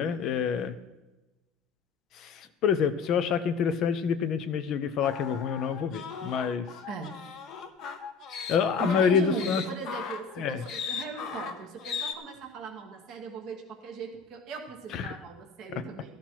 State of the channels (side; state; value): right; quieter; 5.5 dB